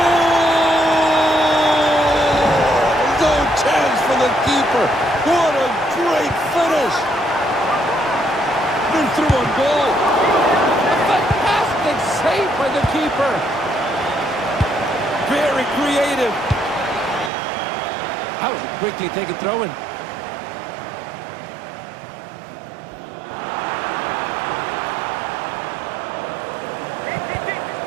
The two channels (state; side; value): drops out; left; at 17.3 s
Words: No chance for the keeper. What a great finish. Been through on goal. Saved by the keeper. Very creative. That was a quickly taken throw-in.